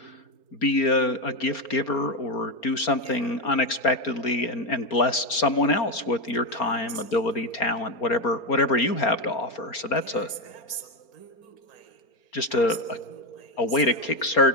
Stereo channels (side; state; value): right; late; 4.3 ms